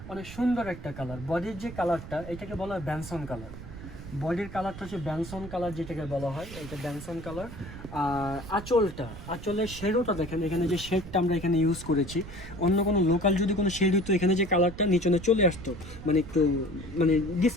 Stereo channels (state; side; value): noise; right; rumble, 12 dB below the sound